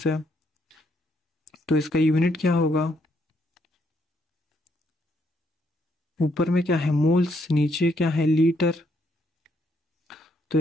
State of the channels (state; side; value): normal; both; correlation 0.73